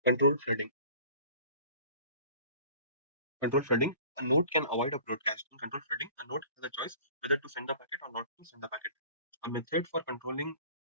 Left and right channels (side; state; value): both; inverted; correlation -0.47